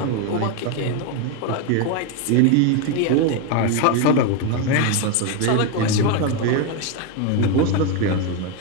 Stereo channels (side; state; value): both; different; correlation 0.02